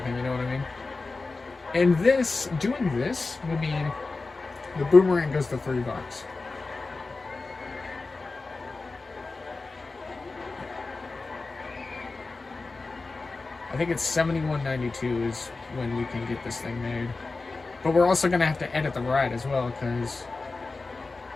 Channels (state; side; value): quieter; right; 3.7 dB